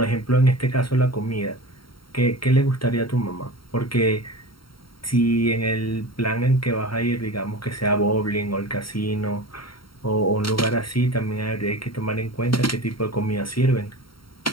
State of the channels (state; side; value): late; right; 0.73 ms